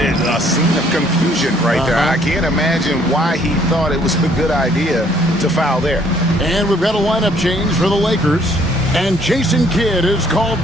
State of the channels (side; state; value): both; normal; correlation 0.63